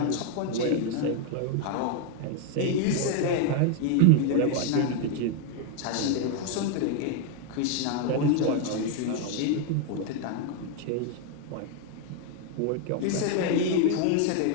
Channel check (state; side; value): different; both; correlation 0.01